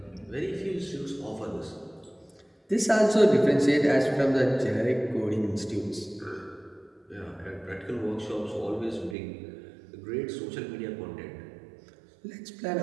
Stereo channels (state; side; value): drops out; left; at 9.2 s